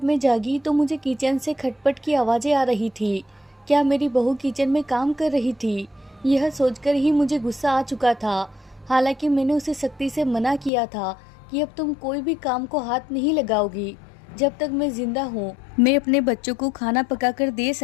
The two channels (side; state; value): right; drops out; at 10.7 s